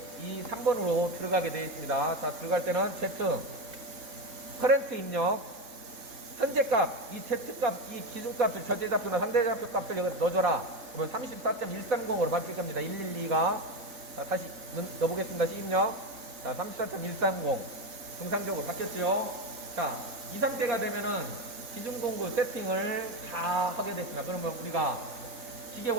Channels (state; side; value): late; left; 3.7 ms